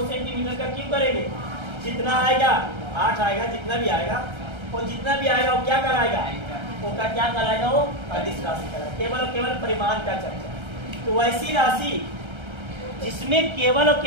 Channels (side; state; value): left; late; 1.3 ms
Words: सेंटीमीटर का क्यों करेंगे, जितना आएगा 8 आएगा, जितना भी आएगा, और जितना भी आएगा वो क्या कराएगा, वो का क्या कराएगा, वो अदिश राशि कराएगा। केवल और केवल परिमाण का चर्चा। तो वैसी राशि जिसमें केवल और